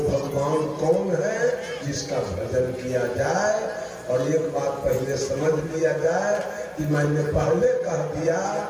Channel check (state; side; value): identical; both; correlation 1.00